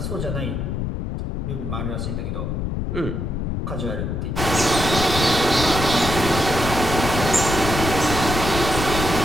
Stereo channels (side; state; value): left; noise; rumble, 2 dB below the sound